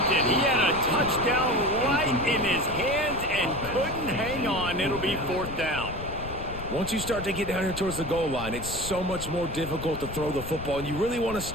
it. He had a touchdown right in his hands and couldn't hang on. It'll be 4th down. Once you start to get down here towards the goal line, it's so much more difficult to throw the football, and you really want to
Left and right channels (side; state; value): left; noise; rumble, 10 dB below the sound